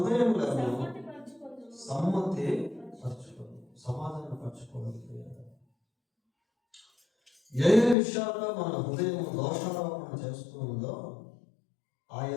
సమ్మతి పరచుకోవడం, సమాధాన పరచుకోవడం. ఏ విషయాల్లో మన హృదయం దోషారోపణ చేస్తూ ఉందో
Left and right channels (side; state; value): right; drops out; at 8.0 s